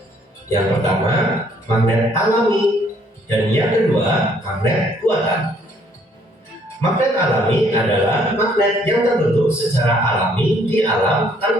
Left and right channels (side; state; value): both; normal; correlation 0.64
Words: Yang pertama, magnet alami, dan yang kedua, magnet buatan. Magnet alami adalah magnet yang terbentuk secara alami di alam